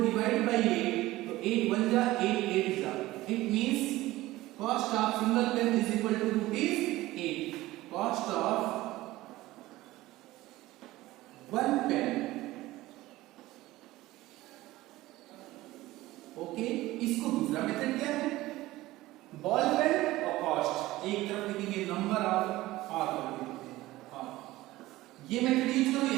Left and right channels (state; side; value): quieter; left; 17.6 dB